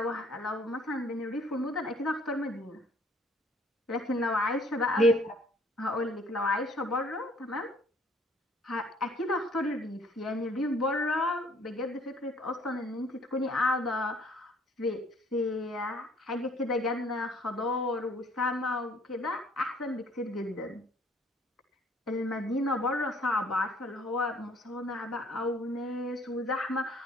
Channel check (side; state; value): both; normal; correlation 0.59